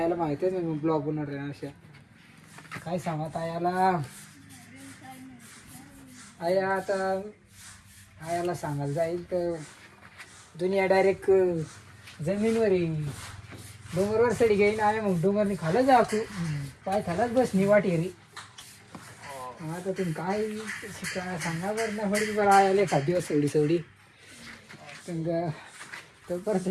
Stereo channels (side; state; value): both; identical; correlation 1.00